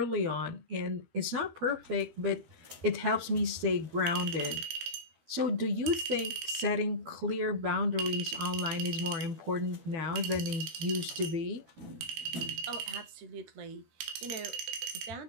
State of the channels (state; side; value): late; left; 13 ms